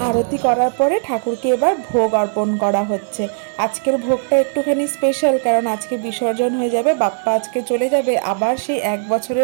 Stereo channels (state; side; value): silent; left; digital silence